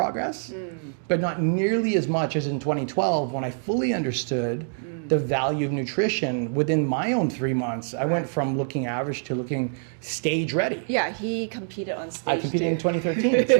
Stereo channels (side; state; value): left; silent; digital silence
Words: but not nearly as much as in 2012 when I fully understood the value of nutrition within my own 3 months. I went from looking average to looking stage ready. Yeah, he competed on stage. I competed in 2013, that's